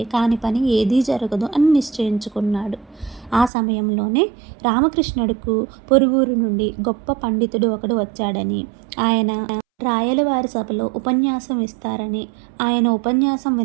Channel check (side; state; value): left; drops out; at 3.5 s